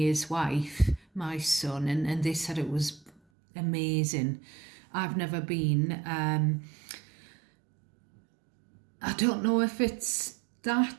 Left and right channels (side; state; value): left; drops out; at 3.2 s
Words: wife, my son, and they said it was amazing. I've never been. I don't know if it's